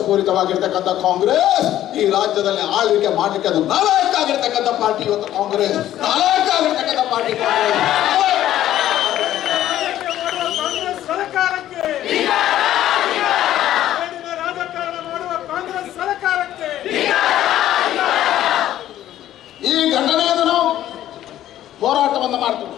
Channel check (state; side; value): quieter; right; 12.7 dB